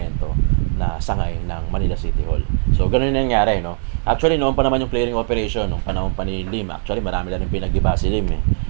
na sangay ng Manila City Hall. So ganun yung nangyari, no? Actually noon pa naman yung clearing operation nung panahon pa ni Lim. Actually marami na rin pinag-iba si Lim eh.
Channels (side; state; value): left; silent; digital silence